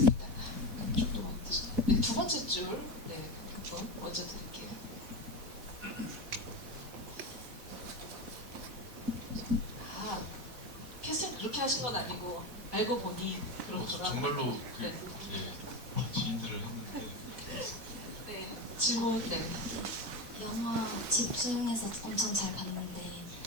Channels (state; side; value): late; left; 4.1 ms